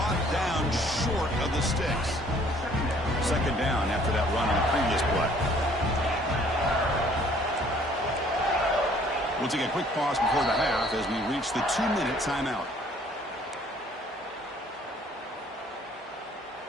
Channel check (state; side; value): normal; both; correlation 0.58